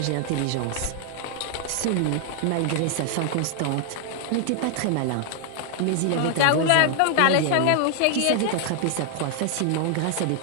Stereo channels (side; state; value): both; different; correlation 0.00